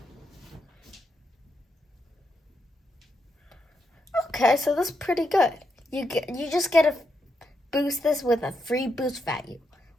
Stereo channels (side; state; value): both; normal; correlation 0.82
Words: okay, so that's pretty good. You just get to boost this with a free boost value